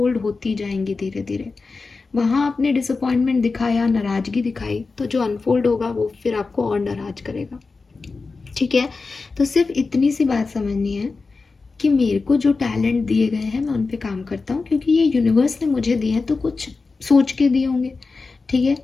होती जाएंगी धीरे धीरे। वहाँ आपने डिसअपॉइंटमेंट दिखाया, नाराज़गी दिखाई, तो जो अनफोल्ड होगा वो फिर आपको और नाराज करेगा, ठीक है। तो सिर्फ इतनी सी बात समझनी है कि मेरे को जो टैलेंट दिए गए हैं मैं उन पे काम करता हूँ, क्योंकि ये यूनिवर्स ने मुझे दिए हैं, तो कुछ सोच के दिए होंगे, ठीक है।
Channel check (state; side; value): quieter; right; 4.1 dB